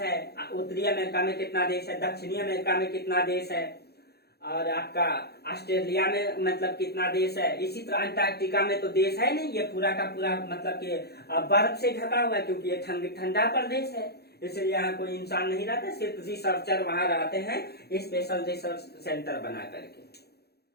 उत्तरी अमेरिका में कितना देश है, दक्षिणी अमेरिका में कितना देश है, और आपका ऑस्ट्रेलिया में मतलब कितना देश है। इसी तरह अंटार्कटिका में तो देश है नहीं, ये पूरा का पूरा मतलब कि बर्फ से ढका हुआ है, क्योंकि ये ठंडा प्रदेश है, इसलिए यहाँ कोई इंसान नहीं रहता, सिर्फ रिसर्चर वहां रहते हैं स्पेशल रिसर्च सेंटर बना करके।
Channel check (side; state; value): right; late; 0.47 ms